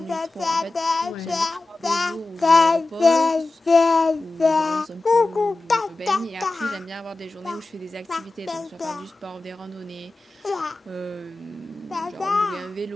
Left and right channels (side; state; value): right; quieter; 3.1 dB